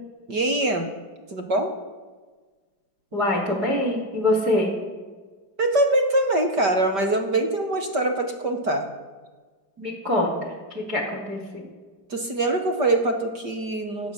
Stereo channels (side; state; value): left; late; 5.2 ms